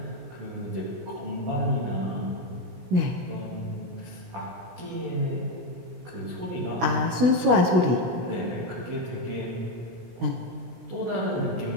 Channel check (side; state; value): left; late; 16 ms